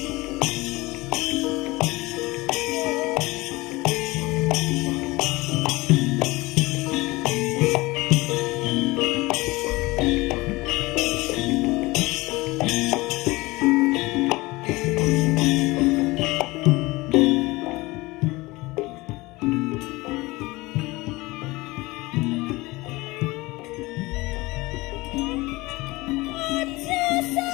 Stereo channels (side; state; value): right; quieter; 21.7 dB